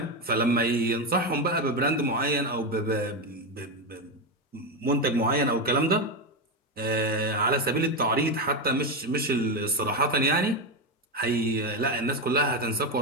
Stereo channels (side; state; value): both; normal; correlation 0.11